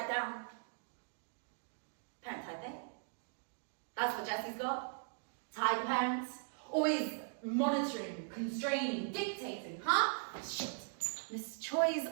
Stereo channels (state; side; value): silent; left; digital silence